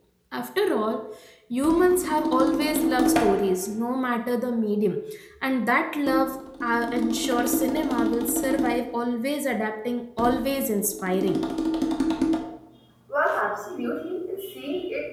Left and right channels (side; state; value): both; identical; correlation 1.00